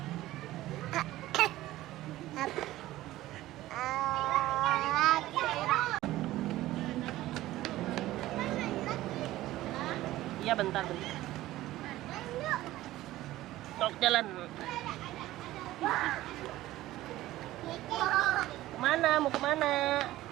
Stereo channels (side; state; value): left; quieter; 15.9 dB